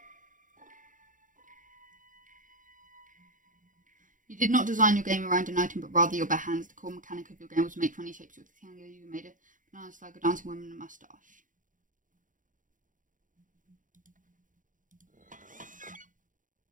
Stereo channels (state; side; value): late; left; 0.38 ms